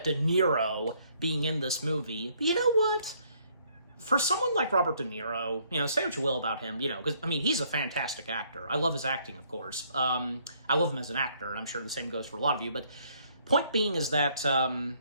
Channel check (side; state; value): both; inverted; correlation -0.66